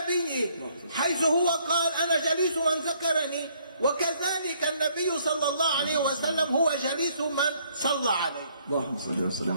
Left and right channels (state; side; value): inverted; both; correlation -0.66